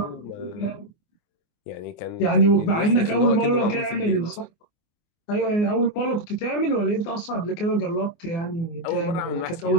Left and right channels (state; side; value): late; right; 24 ms